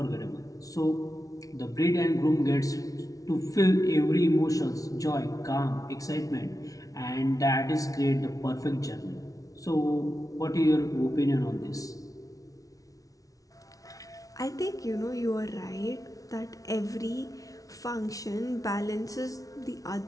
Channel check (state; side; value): late; right; 0.17 ms